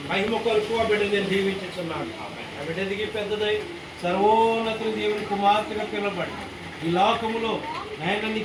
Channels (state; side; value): identical; both; correlation 1.00